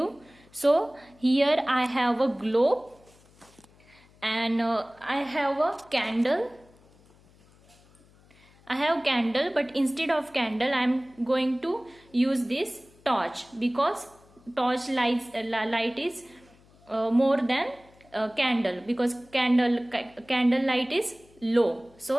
So here I have a globe and I have a candle. I have candle, but instead of candle I am going to use this torch, because torch light is more than candle, because candle light is low.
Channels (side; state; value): left; noise; hum, 28 dB below the sound